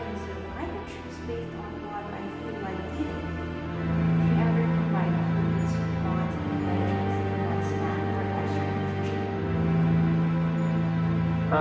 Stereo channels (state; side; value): identical; both; correlation 1.00